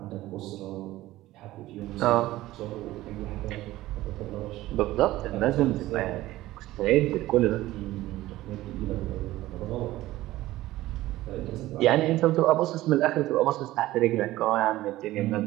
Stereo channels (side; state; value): left; quieter; 16.5 dB